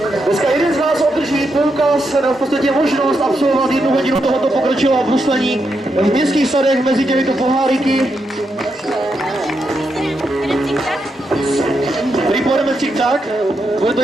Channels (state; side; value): normal; both; correlation 0.83